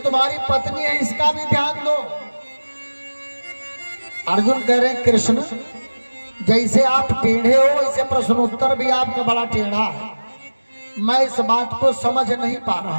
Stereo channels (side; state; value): both; inverted; correlation -1.00